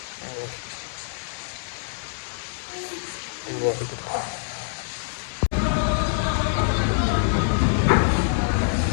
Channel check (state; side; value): silent; right; digital silence